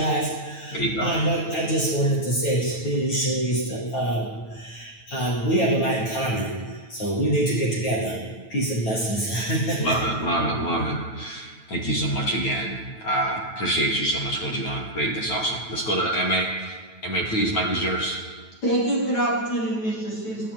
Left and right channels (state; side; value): late; right; 9.1 ms